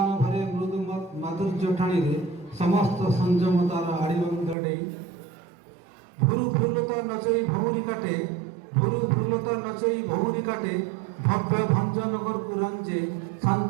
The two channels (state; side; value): drops out; left; at 4.5 s